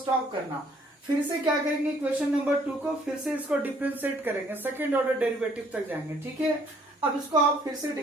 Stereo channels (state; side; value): normal; both; correlation 0.62